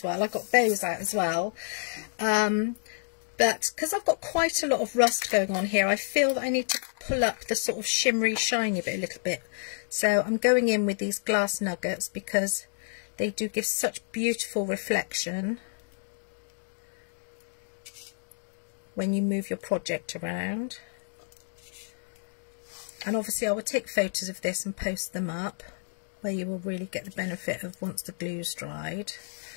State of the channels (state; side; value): silent; right; digital silence